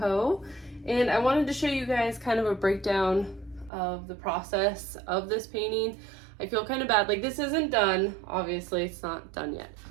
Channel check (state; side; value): drops out; left; at 3.7 s